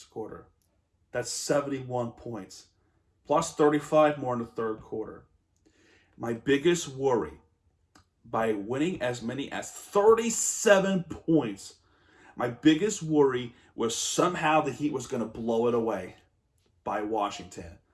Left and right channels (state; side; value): identical; both; correlation 1.00